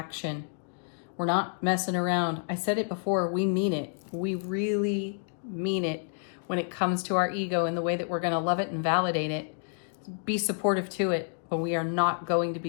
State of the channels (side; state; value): right; silent; digital silence